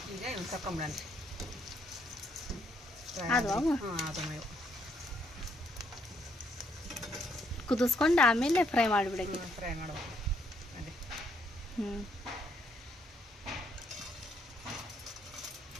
ಈಗ ಇವ್ನು ತಕೊಂಬಿಡನ್ರಿ ಅದು ಹಾಂ ಅದು ಮೇವು ಕುದಿಸ್ಕೊಂಡು ಆಮೇಲೆ ಫ್ರೈ ಮಾಡಿಬಿಡಂಗೆ ಫ್ರೈ ಮಾಡ್ಬೇಕು ಅದೇ ಹ್ಞೂ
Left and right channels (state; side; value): normal; both; correlation 0.71